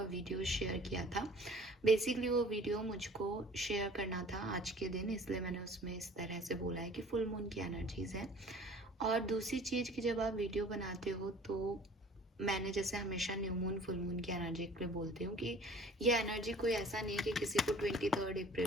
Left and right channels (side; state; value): both; normal; correlation 0.49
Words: वीडियो शेयर किया था। बेसिकली वो वीडियो मुझको शेयर करना था आज के दिन, इसलिए मैंने उसमें इस तरह से बोला है कि फुल मून की एनर्जीज हैं। और दूसरी चीज़ कि जब आप वीडियो बनाते हो तो मैंने जैसे हमेशा न्यू मून फुल मून की एनर्जी के लिए बोलती हूँ कि ये एनर्जी कोई ऐसा नहीं है कि किसी को 23